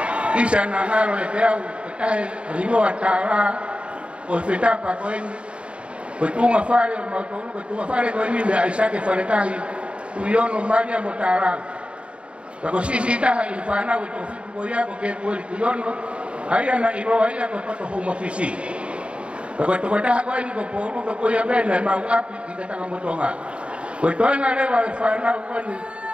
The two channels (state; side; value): late; left; 0.058 ms